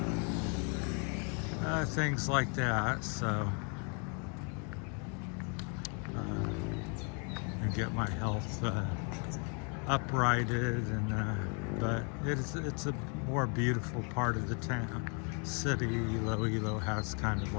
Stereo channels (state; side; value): quieter; right; 37.3 dB